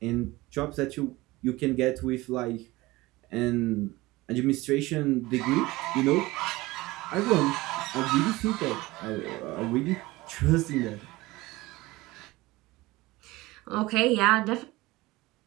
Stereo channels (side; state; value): left; quieter; 20.1 dB